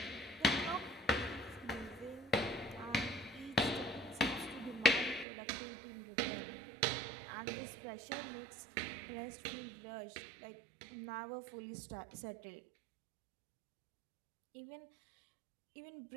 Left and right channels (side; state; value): left; drops out; at 5.2 s